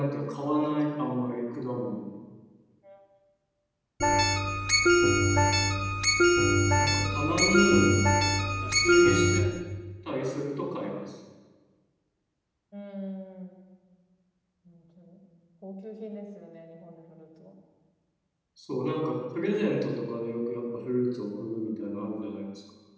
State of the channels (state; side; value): identical; both; correlation 1.00